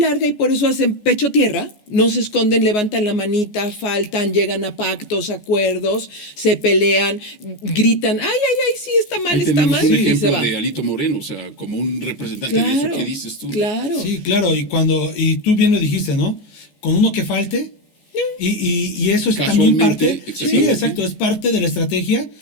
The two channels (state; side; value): late; right; 14 ms